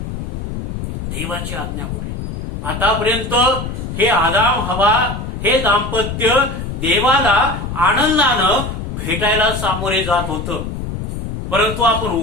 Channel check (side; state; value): left; noise; rumble, 5 dB below the sound